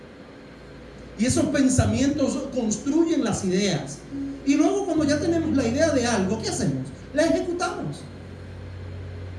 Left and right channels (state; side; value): identical; both; correlation 1.00